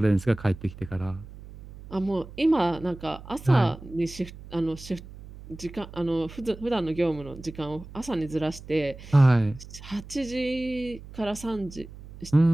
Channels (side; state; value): right; noise; hum, 16 dB below the sound